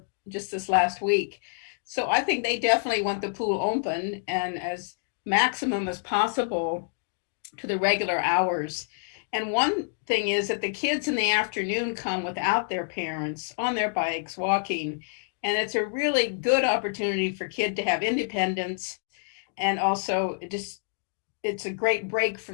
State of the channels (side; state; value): right; silent; digital silence